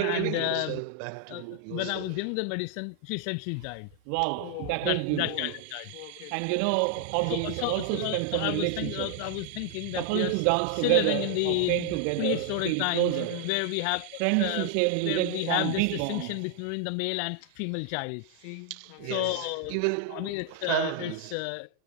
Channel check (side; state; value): both; different; correlation 0.00